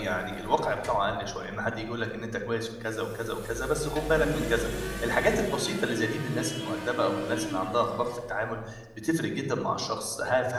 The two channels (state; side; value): identical; both; correlation 1.00